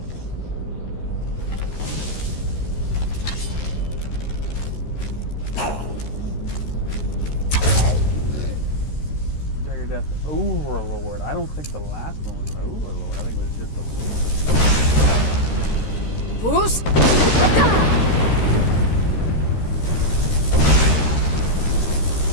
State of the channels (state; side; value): late; right; 13 ms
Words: Dagger Death Overlord. I don't think the last one was an Overlord. I think it was just a Lord. Who's?